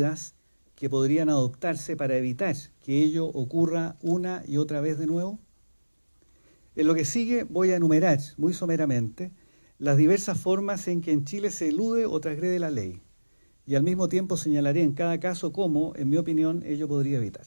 que podrían adoptarse para evitar que ello ocurra una y otra vez de nuevo? En lo que sigue voy a enumerar muy someramente las diversas formas en que en Chile se elude o transgrede la ley, y al mismo tiempo señalaré en cada caso cómo, en mi opinión, ello podría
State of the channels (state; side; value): inverted; both; correlation -1.00